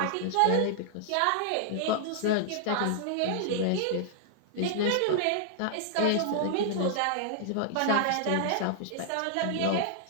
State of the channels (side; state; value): both; different; correlation -0.01